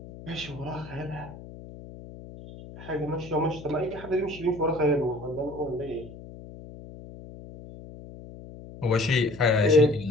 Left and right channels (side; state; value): left; noise; hum, 15 dB below the sound